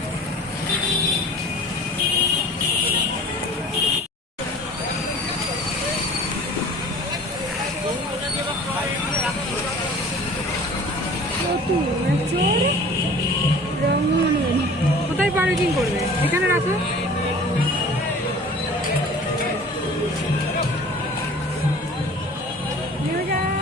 কোথায় পার্কিং করবে? এখানে রাখো।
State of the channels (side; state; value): both; normal; correlation 0.45